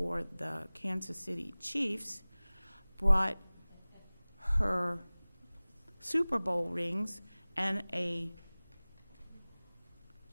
the Kansas City Chiefs, brought her Super Bowl rings and a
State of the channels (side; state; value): both; inverted; correlation -1.00